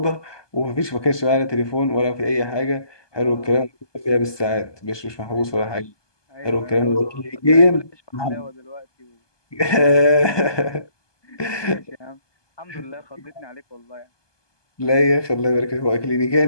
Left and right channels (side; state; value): right; late; 1.2 ms